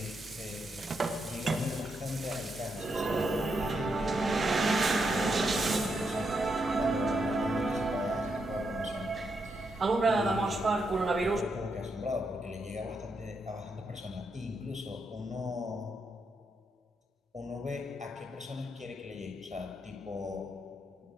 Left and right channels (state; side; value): normal; both; correlation 0.81